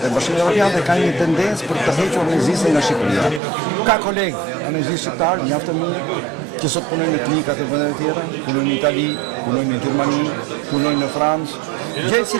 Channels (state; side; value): drops out; left; at 3.4 s